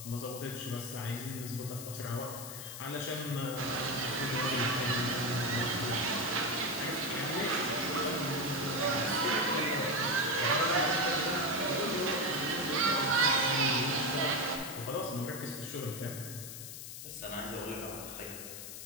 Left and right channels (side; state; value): left; noise; hiss, 10 dB below the sound